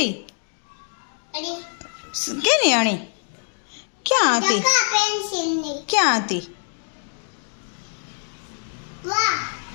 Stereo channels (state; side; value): silent; right; 63 dB below the other